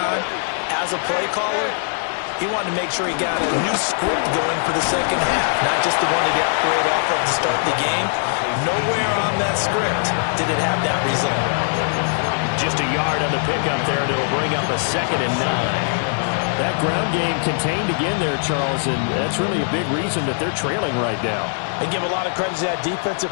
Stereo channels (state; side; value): silent; right; digital silence